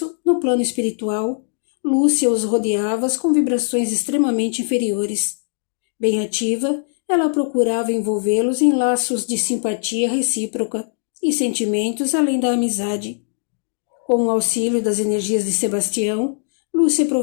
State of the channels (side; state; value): right; silent; digital silence